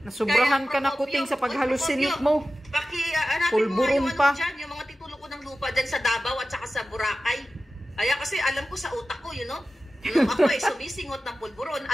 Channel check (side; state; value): both; normal; correlation 0.94